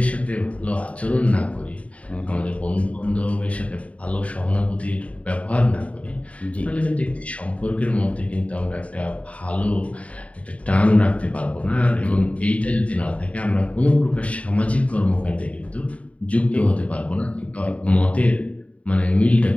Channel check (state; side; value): late; right; 0.066 ms